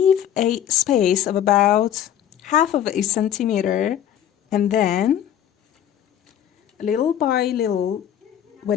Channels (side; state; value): right; quieter; 10.4 dB